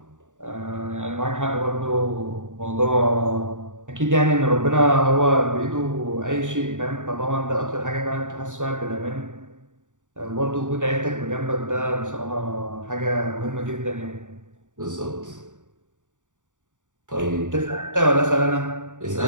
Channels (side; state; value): left; late; 0.86 ms